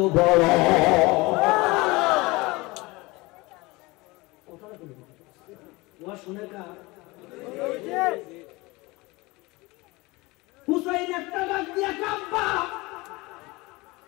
বড় ওয়াজ শুনে কা হুসাইন একটা ডাক দিয়া কাব্বা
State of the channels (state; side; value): quieter; right; 22.9 dB